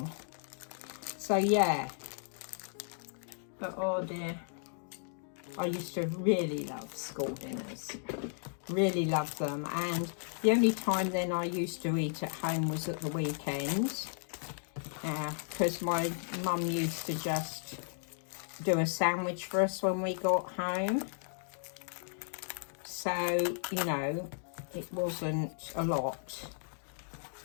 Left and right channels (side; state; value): right; silent; digital silence